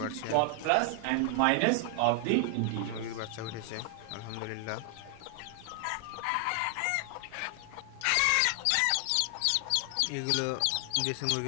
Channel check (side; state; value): both; different; correlation 0.00